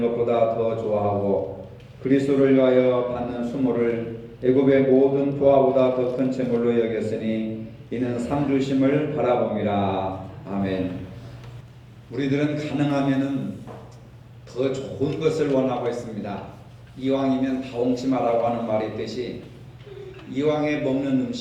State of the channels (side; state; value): both; identical; correlation 1.00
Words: 것보다 더 좋아하고 그리스도를 위하여 받는 수모를 애굽의 모든 부하보다 더 큰 채물로 여겼으니 이는 상주심을 바라봅니다. 아멘. 우리들은 가능하면은 더 좋은 것을 원하고 있습니다. 이왕이면 다홍치마라고 하는 말이 있듯이 이왕에 먹는